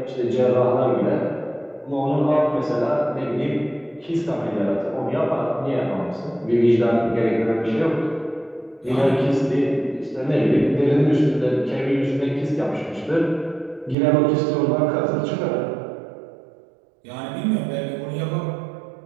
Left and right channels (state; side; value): drops out; left; at 14.0 s